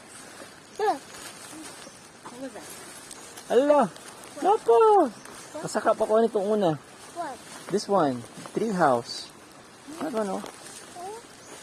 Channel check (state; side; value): identical; both; correlation 1.00